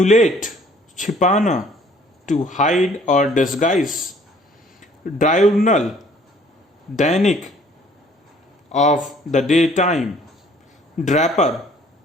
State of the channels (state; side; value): normal; both; correlation 0.57